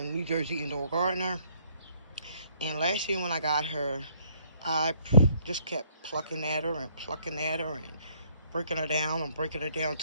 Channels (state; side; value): inverted; both; correlation -0.65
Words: Jersey Indoor Gardener. And last year when I got her, I just kept plucking at her and breaking her down and breaking her down